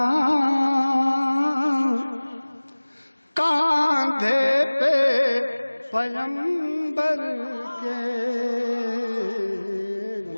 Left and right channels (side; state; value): both; inverted; correlation -1.00